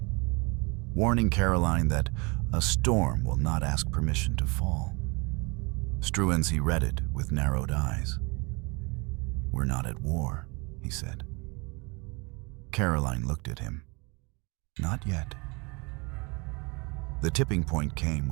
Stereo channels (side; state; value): left; quieter; 29.0 dB